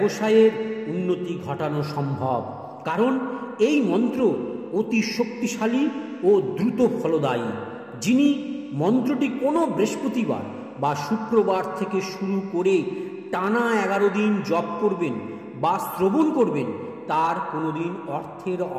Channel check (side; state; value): both; identical; correlation 1.00